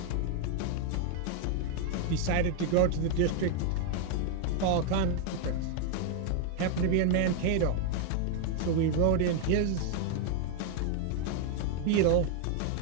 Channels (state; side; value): different; both; correlation 0.00